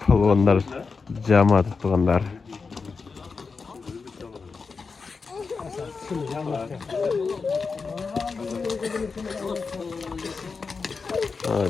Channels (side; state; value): right; quieter; 4.8 dB